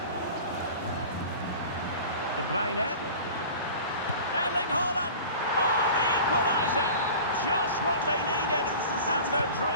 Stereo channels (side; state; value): both; inverted; correlation -0.38